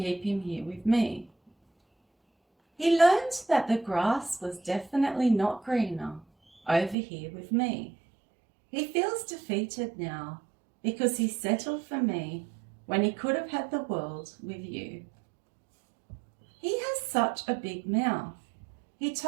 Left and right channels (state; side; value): drops out; left; at 7.0 s